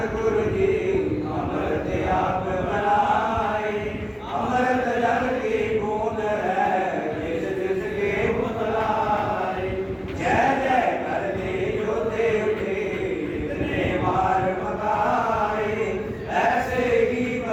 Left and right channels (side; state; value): both; identical; correlation 1.00